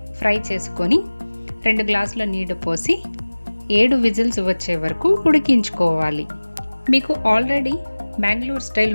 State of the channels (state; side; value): inverted; both; correlation -1.00